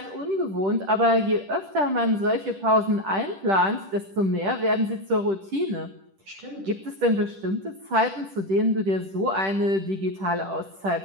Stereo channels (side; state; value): left; late; 10 ms